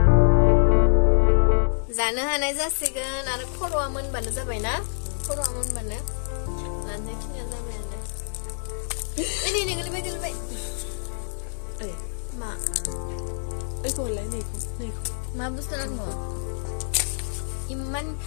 जानो हानाय जासिगोन आरो खर'आ मोनबानो जाबाय ना खर'आ मोनबानो लानोसै खिनिया जाबायानो नै गोलैबाय ओइ मा ओइखौ हरलाय नैखौ मा बुस्थु नांगौ इमान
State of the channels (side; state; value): right; silent; 61 dB below the other